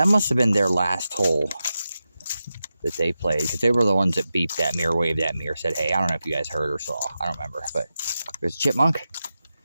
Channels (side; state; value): both; inverted; correlation -0.91